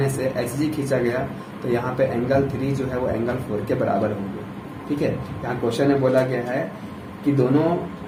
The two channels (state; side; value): identical; both; correlation 1.00